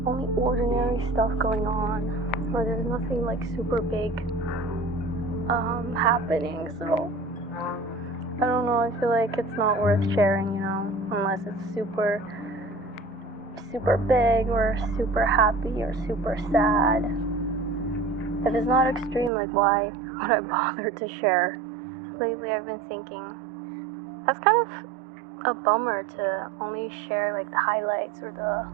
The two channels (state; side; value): drops out; left; at 19.3 s